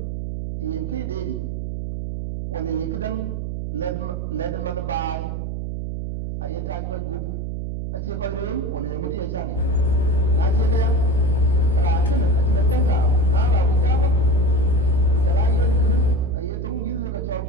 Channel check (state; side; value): noise; right; hum, 4 dB below the sound